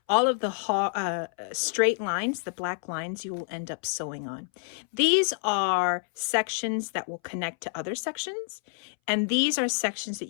All of the straight lines, the black lines, you will end up sewing on. These are sections that will connect to other sections, and these are sections that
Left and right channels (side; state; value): right; silent; 59 dB below the other